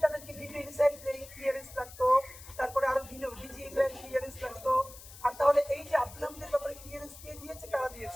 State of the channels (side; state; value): left; noise; hiss, 17 dB below the sound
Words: তাদেরকে বিভিন্ন এনএসআই ক্লিয়ারেন্স লাগতো, তারপরে আরো ভিন্ন ডিজি ক্লিয়ারেন্স লাগতো। আর তাহলে এই যে আব্দুল হামিদের ব্যাপারে ক্লিয়ারেন্স কে দিয়েছে, কারা